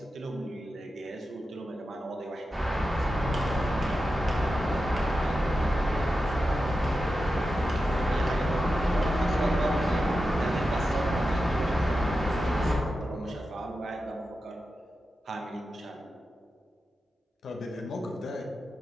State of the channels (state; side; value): normal; both; correlation 0.91